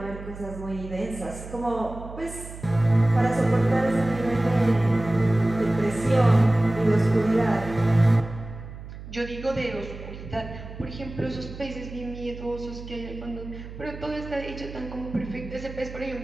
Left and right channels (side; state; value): right; noise; hum, 13 dB below the sound